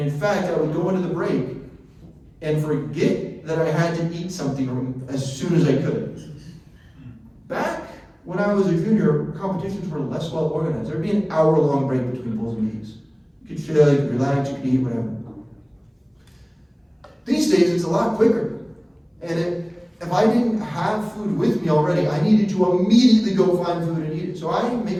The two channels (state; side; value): identical; both; correlation 1.00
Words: fact, I would go into the break and forget that I had to eat something as soon as I could. Back when I was a junior, competitions were less well organized. There'd be an hour-long break between pulls and knees. You could chill, you could relax, you could eat, whatever. These days, it's a lot quicker. And if I didn't have food with me already, I needed to immediately go find food and eat it. So I make